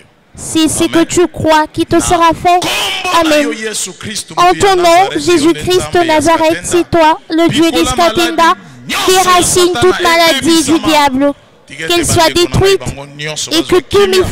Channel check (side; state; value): both; identical; correlation 1.00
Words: c'est ce que tu crois qui te sera fait. Amen. En ton nom, Jésus-Christ de Nazareth, c'est toi, le Dieu d'Iskatenda, déracine toute maladie du diable, qu'elle soit détruite et que tous mes